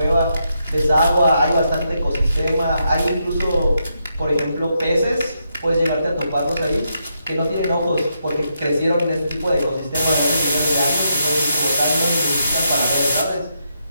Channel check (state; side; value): inverted; both; correlation -0.81